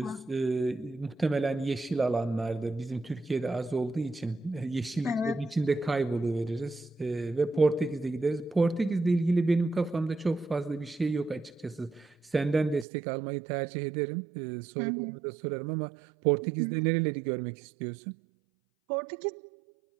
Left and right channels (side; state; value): left; drops out; at 12.9 s